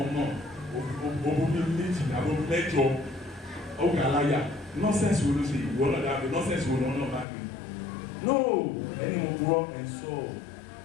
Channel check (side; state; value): right; drops out; at 7.2 s